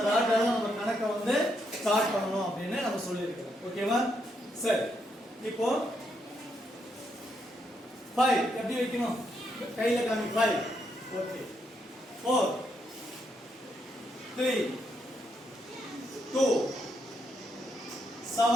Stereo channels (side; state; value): both; normal; correlation 0.78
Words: ராட்ல நம்ம கணக்க ஸ்டார்ட் பண்ணணும் அப்படின்னு நம்ம சொல்லி இருக்கிறோம். ஓகேவா? சரி, இப்போ 5 எப்படி வைக்கணும்? கையில காமி 5. ஓகே. 4 3 2